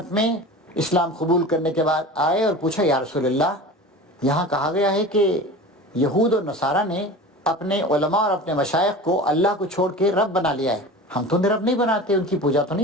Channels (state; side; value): normal; both; correlation 0.34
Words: میں اسلام قبول کرنے کے بعد آئے اور پوچھا یا رسول اللہ، یہاں کہا گیا ہے کہ یہود اور نصارہ نے اپنے علماء اور اپنے مشائخ کو اللہ کو چھوڑ کے رب بنا لیا ہے، ہم تو رب نہیں بناتے، ان کی پوجا تو